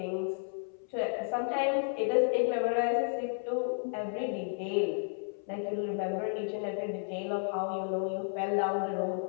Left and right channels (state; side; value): silent; right; 56 dB below the other